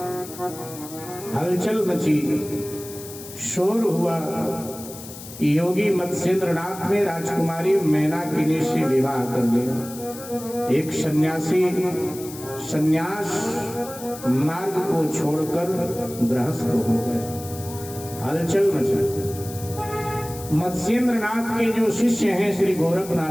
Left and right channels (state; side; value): noise; left; hiss, 14 dB below the sound